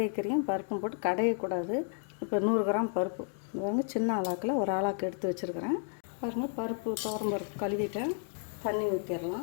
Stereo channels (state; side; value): silent; right; 56 dB below the other